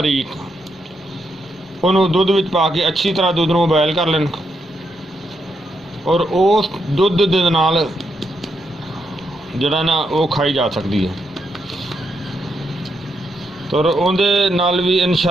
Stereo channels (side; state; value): both; normal; correlation 0.80